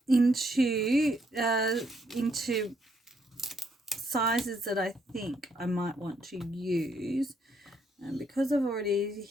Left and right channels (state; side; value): normal; both; correlation 0.73